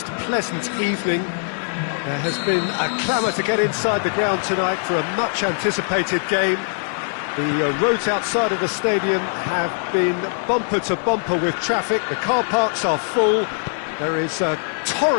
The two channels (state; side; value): silent; right; 65 dB below the other